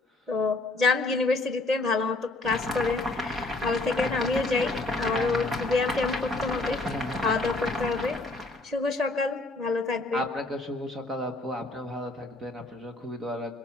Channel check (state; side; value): quieter; right; 3.0 dB